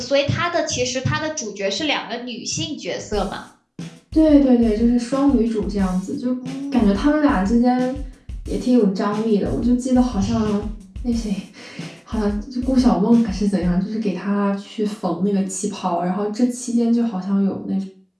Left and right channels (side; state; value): both; identical; correlation 1.00